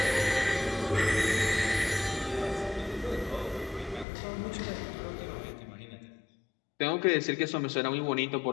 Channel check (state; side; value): drops out; right; at 4.0 s